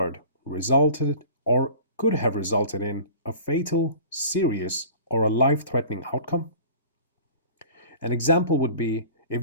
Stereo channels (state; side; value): inverted; both; correlation -0.43